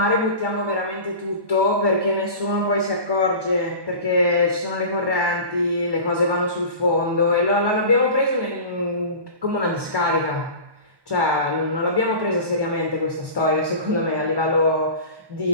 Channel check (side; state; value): left; late; 1.1 ms